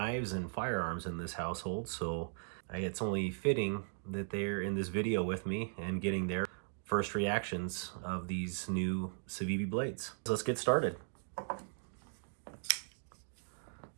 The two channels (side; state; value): left; silent; digital silence